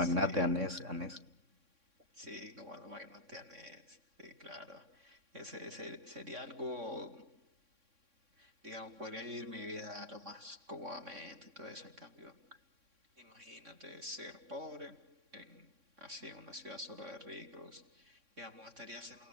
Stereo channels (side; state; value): left; late; 3.6 ms